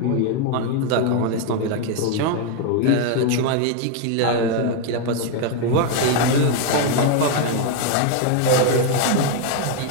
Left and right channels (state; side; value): different; both; correlation 0.01